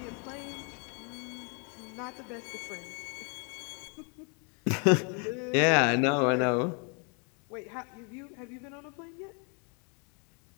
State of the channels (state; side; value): quieter; right; 36.8 dB